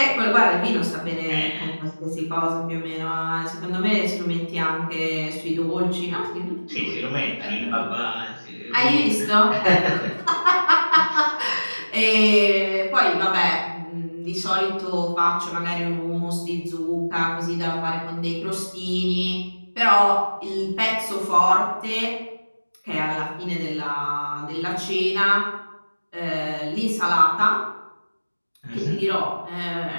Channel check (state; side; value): inverted; both; correlation -1.00